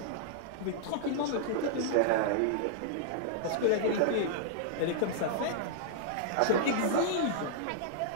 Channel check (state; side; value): different; both; correlation -0.01